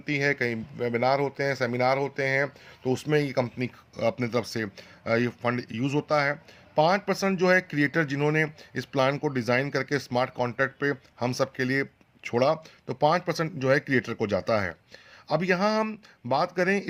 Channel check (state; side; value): identical; both; correlation 1.00